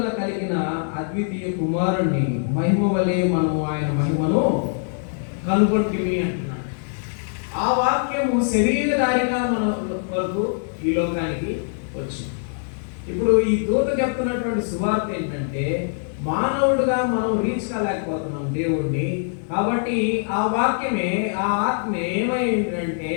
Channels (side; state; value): right; silent; digital silence